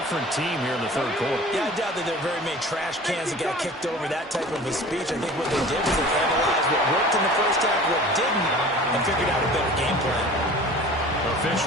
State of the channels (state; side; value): normal; both; correlation 0.42